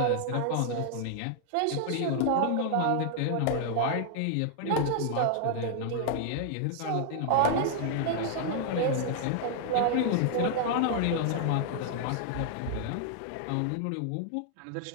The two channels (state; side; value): different; both; correlation -0.01